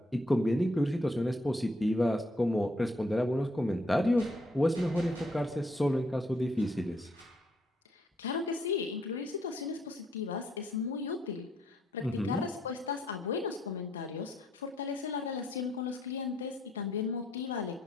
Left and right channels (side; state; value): both; normal; correlation 0.71